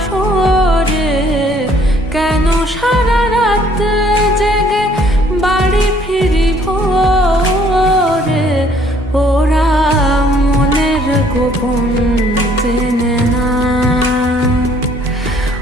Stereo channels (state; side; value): normal; both; correlation 0.61